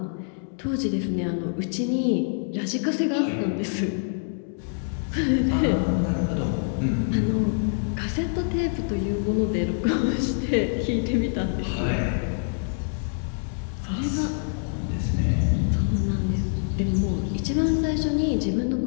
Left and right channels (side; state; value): right; silent; digital silence